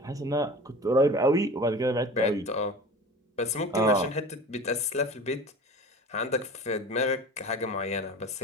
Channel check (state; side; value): normal; both; correlation 0.37